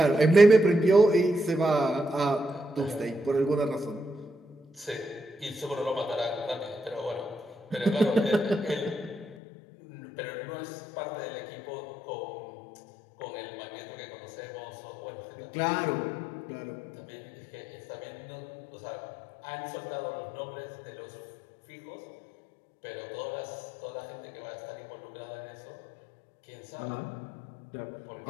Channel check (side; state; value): right; drops out; at 9.3 s